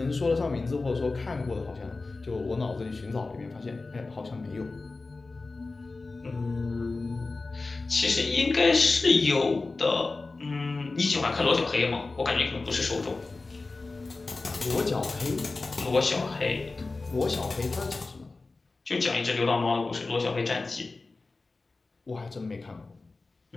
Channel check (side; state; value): right; quieter; 3.6 dB